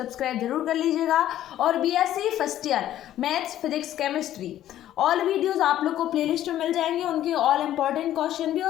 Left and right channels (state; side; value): quieter; right; 12.4 dB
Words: जरूर कर लीजिएगा। और BSc first year maths, physics, chemistry all videos आप लोग को प्लेलिस्ट में मिल जाएंगे, उनके ऑल इंपॉर्टेंट क्वेश्चन भी